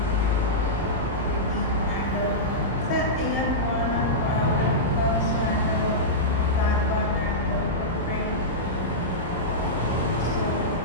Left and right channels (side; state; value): both; normal; correlation -0.13